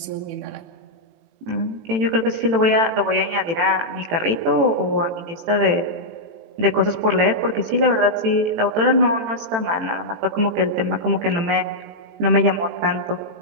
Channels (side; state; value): left; late; 18 ms